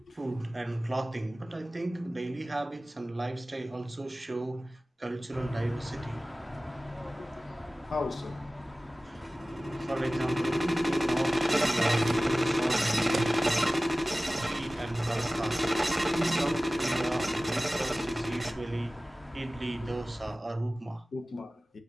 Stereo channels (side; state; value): both; normal; correlation 0.97